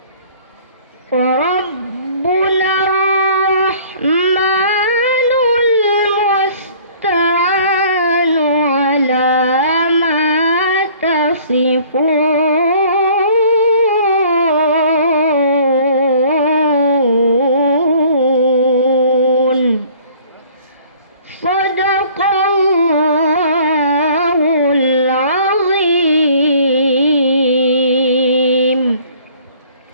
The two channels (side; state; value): both; inverted; correlation -0.53